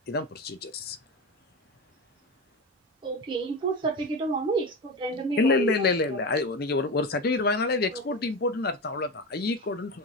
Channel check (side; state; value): both; normal; correlation 0.21